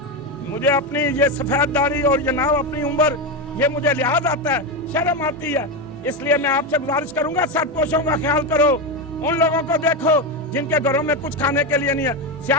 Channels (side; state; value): both; normal; correlation 0.12